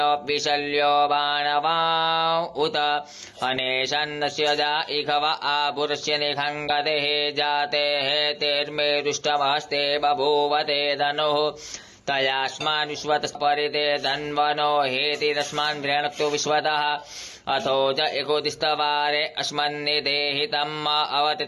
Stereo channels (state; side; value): identical; both; correlation 1.00